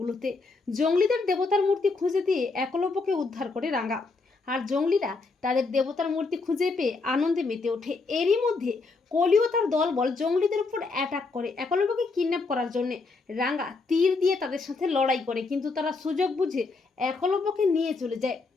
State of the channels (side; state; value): right; quieter; 3.9 dB